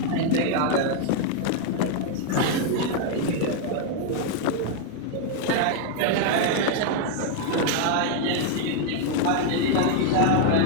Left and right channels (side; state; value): both; different; correlation 0.00